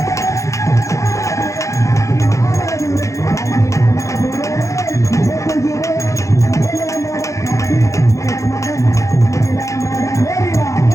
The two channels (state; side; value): late; right; 0.15 ms